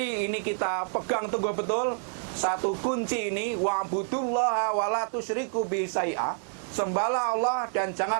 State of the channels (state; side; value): silent; left; digital silence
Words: ini kita pegang teguh betul satu kunci ini, wa'budullaha wa la tusyriku bihi syai'a. Sembahlah Allah dan